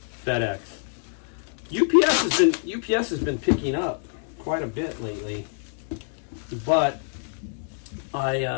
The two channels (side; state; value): right; silent; digital silence